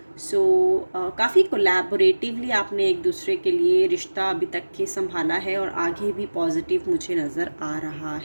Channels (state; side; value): inverted; both; correlation -1.00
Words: सो काफ़ी कोलैबोरेटिवली आपने एक दूसरे के लिए रिश्ता अभी तक के संभाला है और आगे भी पॉजिटिव मुझे नज़र आ रहा